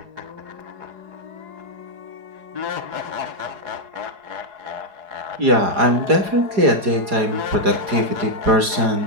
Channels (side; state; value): left; late; 4.9 ms